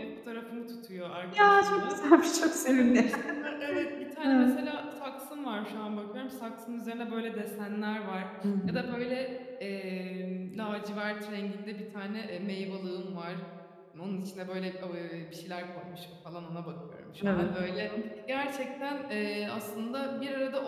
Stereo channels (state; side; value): identical; both; correlation 1.00